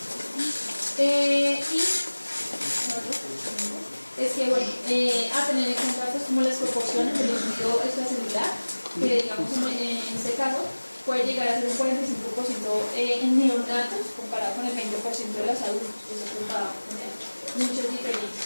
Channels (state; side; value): inverted; both; correlation -1.00